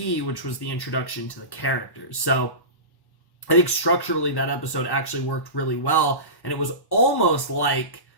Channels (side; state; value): right; late; 1.1 ms